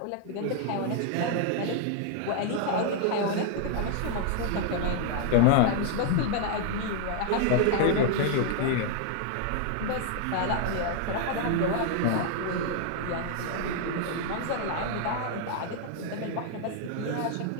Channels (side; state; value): both; different; correlation 0.00